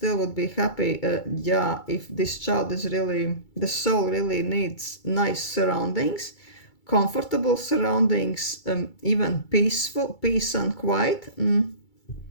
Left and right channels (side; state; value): right; late; 2.3 ms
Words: would be happy. Yeah, if this child is really, the soul really needs nice surroundings, comfortable surroundings, even peace and quiet.